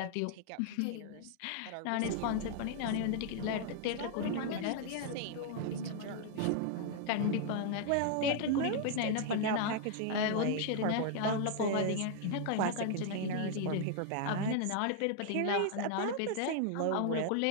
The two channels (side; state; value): both; different; correlation -0.01